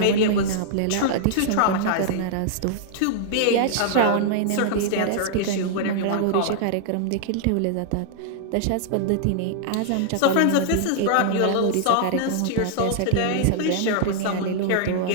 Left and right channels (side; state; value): both; different; correlation -0.01